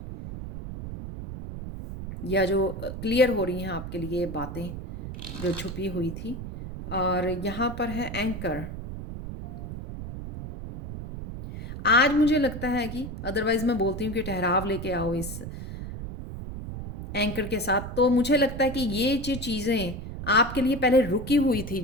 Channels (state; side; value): noise; right; rumble, 8 dB below the sound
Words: या जो क्लियर हो रही हैं आपके लिए बातें जो छुपी हुई थी। और यहाँ पर है एंकर। आज मुझे लगता है कि, अदरवाइज मैं बोलती हूँ कि ठहराव लेके आओ इस एंकर के साथ। तो मुझे लगता है कि ये जो चीज़ें आपके लिए पहले रुकी हुई थी,